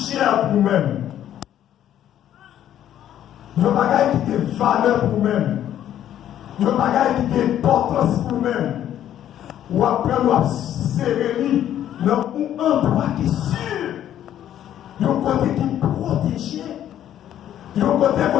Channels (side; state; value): right; quieter; 11.1 dB